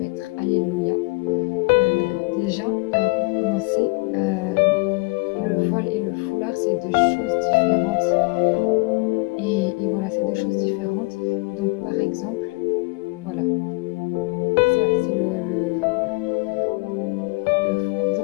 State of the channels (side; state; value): right; quieter; 26.9 dB